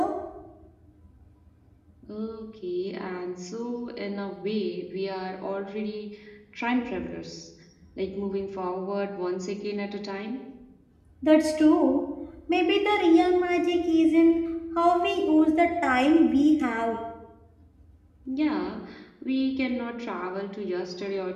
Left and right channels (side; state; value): both; identical; correlation 1.00